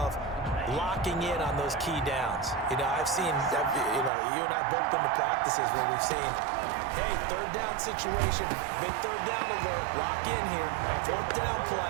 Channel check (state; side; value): drops out; left; at 4.1 s